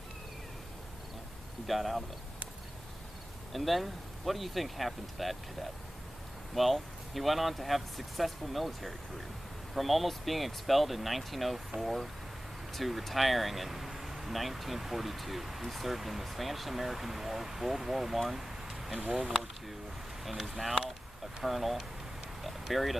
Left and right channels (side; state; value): both; normal; correlation 0.96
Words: he got out of it. And then, what do you think happened to that cadet? Well, he went on to have a successful military career. From almost being expelled in 1904 to retiring in 1942, he served in the Spanish-American War, World War I, and World War II, and is now a colonel, buried